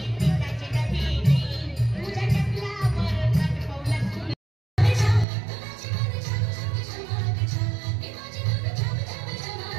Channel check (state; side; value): drops out; left; at 5.2 s